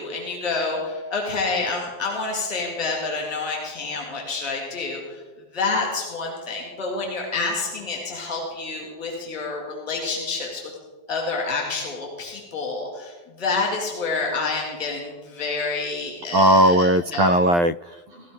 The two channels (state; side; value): late; left; 12 ms